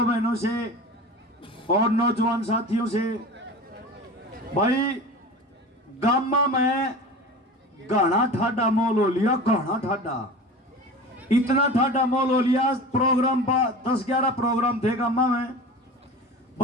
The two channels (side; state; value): both; normal; correlation 0.34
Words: बहनों से और नौजवान साथियों से, भाई गामा में गाना ठाडा मोल हो लिया, गाना ठाडा, इतना ठाडा मोल हो लिया। प्रोग्राम 10-11 प्रोग्राम थे गामा में।